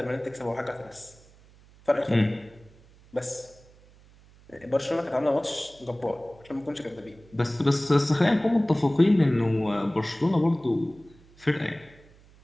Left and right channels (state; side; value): noise; right; hum, 26 dB below the sound